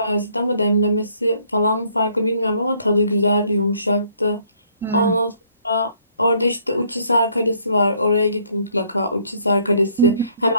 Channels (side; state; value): both; inverted; correlation -0.65